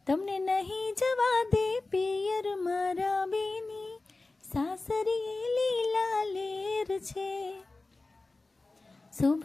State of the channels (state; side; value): quieter; right; 3.3 dB